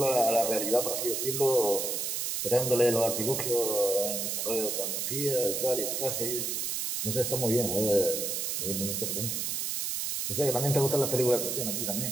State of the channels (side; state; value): right; noise; hiss, 1 dB below the sound